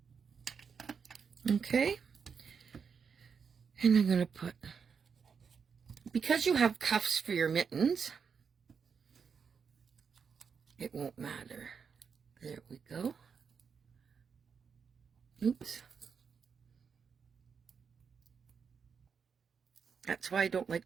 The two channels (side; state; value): left; quieter; 6.2 dB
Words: Okay. And I'm going to put, because you have cuffs for your mittens, it won't matter. There we go. Oops. That's why I don't like